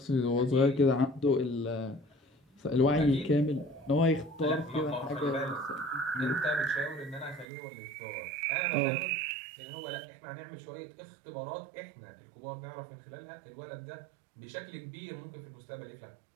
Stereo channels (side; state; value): left; drops out; at 7.5 s